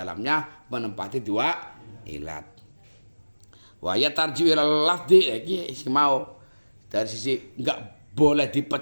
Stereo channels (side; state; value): both; inverted; correlation -1.00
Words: menempati dua ilat. Wa ya tarji'u ilal lafzi, iki mau dari sisi enggak boleh